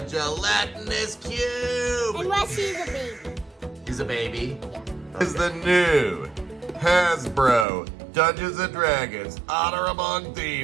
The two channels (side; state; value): left; drops out; at 7.7 s